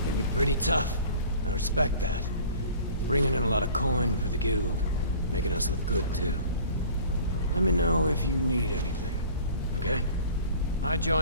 You're pretty tough. I respect that. Bringing in a lot of coin for the guild. Making us look good, too. Let me know if you need anything, okay? I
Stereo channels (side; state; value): both; inverted; correlation -0.47